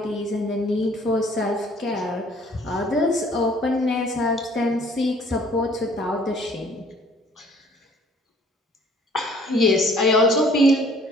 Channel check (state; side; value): normal; both; correlation 0.56